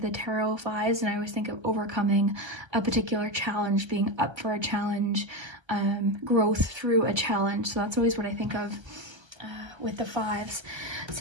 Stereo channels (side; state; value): left; late; 1.3 ms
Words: the tarot 5s, and I always think of overcoming a particular challenge, being up for a challenge, growth through a challenge. So that's always what I think of with the 5s.